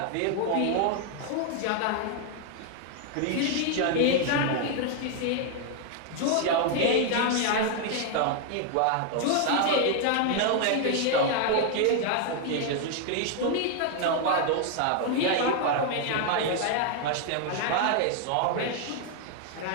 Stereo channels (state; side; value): different; both; correlation 0.00